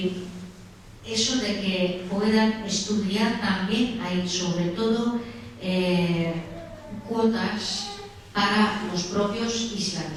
eso de que puedan estudiar también, hay sobre todo cuotas para los propios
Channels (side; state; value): both; identical; correlation 1.00